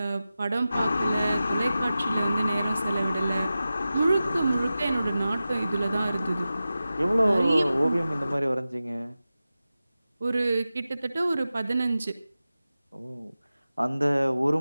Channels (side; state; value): both; inverted; correlation -0.94